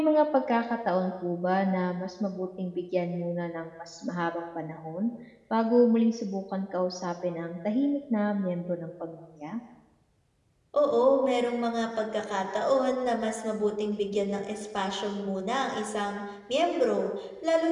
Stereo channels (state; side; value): identical; both; correlation 1.00